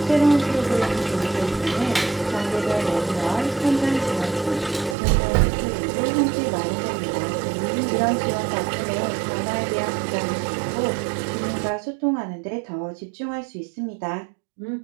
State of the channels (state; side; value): drops out; left; at 5.0 s